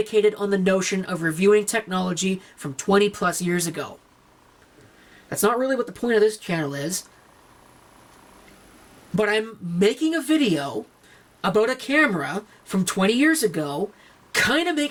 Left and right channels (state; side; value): identical; both; correlation 1.00